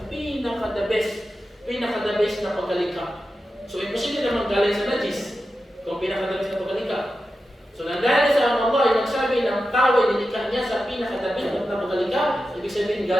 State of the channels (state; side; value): normal; both; correlation 0.91